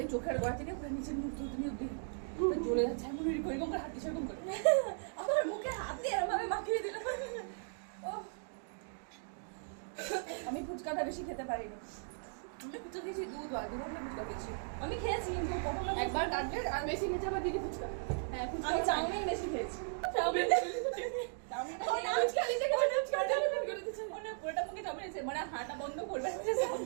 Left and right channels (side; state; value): left; silent; digital silence